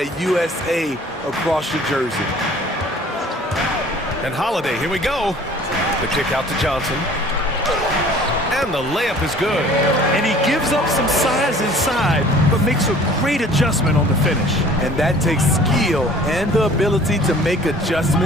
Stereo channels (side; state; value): both; normal; correlation 0.50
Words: USA across your jersey. And Holiday, here we go. The kick out to Johnson. And the layup is good. And he gives up some size inside, but makes a great adjustment on the finish. And that takes skill and the ability to make